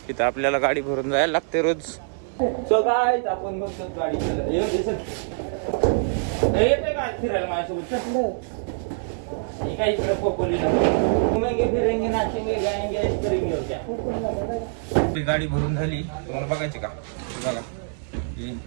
तिथं आपल्याला गाडी भरून जायला लागते रोज. सो गाईज आपण बघतो गाडी. येते काय फिरायला माझ्यासोबत? काय इकडे खोपोलीला घुमेंगे फिरेंगे नाचेंगे गाएंगे ऐश करेंगे हो क्या. आपली गाडी भरून झाली. तुम्हाला बघायची का? बघा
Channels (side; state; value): left; silent; digital silence